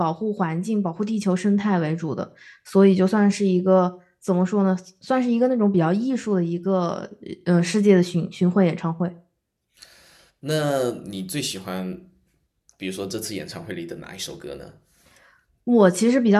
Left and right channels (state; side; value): identical; both; correlation 1.00